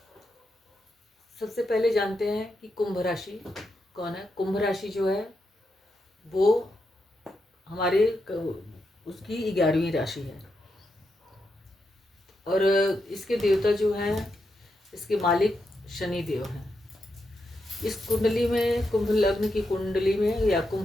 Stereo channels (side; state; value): both; normal; correlation 0.84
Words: सबसे पहले जानते हैं कि कुंभ राशि कौन है। कुंभ राशि जो है वो हमारे उसकी 11वीं राशि है और इसके देवता जो हैं, इसके मालिक शनि देव हैं। इस कुंडली में, कुंभ लग्न की कुंडली में या